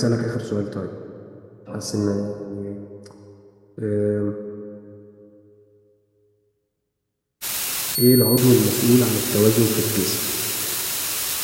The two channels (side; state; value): both; identical; correlation 1.00